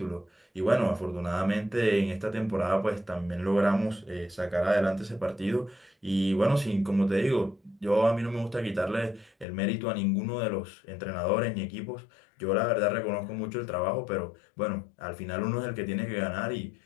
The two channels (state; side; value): drops out; right; at 9.5 s